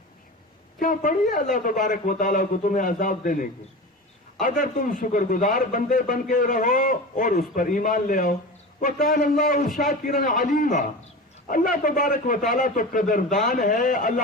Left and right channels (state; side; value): normal; both; correlation 0.30